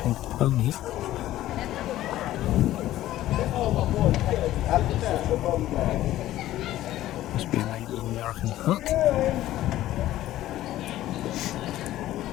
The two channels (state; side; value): quieter; right; 14.3 dB